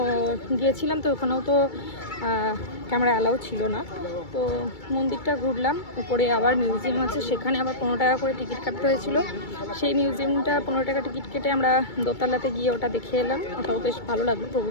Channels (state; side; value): late; right; 2.3 ms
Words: গিয়েছিলাম, তো ওখানেও তো ক্যামেরা অ্যালাউ ছিল না। তো মন্দিরটা ঘুরলাম, উপরে আবার মিউজিয়াম আছে, সেখানে আবার 15 টাকা করে টিকিট কাটতে হয়েছিল। সেই মিউজিয়ামটা 15 টাকা টিকিট কেটে আমরা দোতলাতে গিয়ে ওটা দেখে এলাম। ওটাও বেশ ভালো লাগলো।